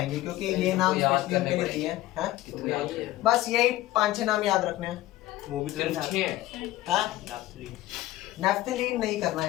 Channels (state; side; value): quieter; right; 16.1 dB